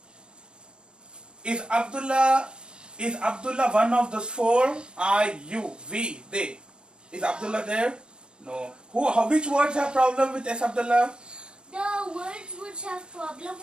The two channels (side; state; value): left; late; 0.054 ms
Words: Is Abdullah one of those four? I, you, we, they. Is Abdullah there? No. Which words have problem with S, Abdullah? The words which have problem